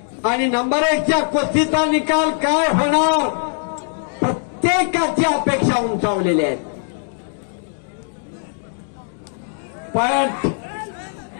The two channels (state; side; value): silent; right; digital silence